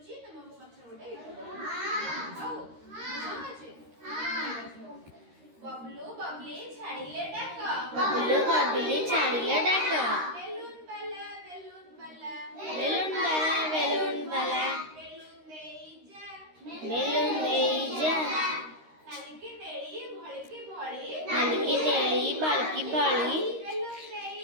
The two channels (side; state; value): left; late; 13 ms